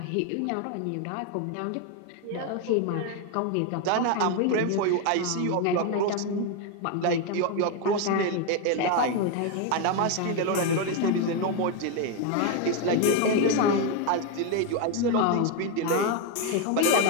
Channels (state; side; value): different; both; correlation 0.02